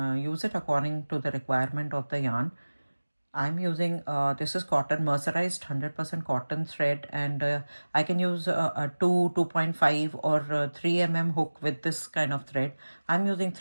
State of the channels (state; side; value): inverted; both; correlation -1.00